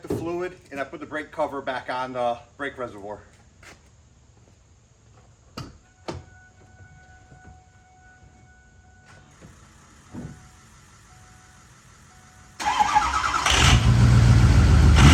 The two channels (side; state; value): both; identical; correlation 1.00